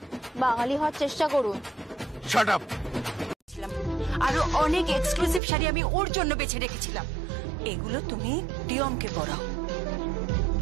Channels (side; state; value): left; drops out; at 5.4 s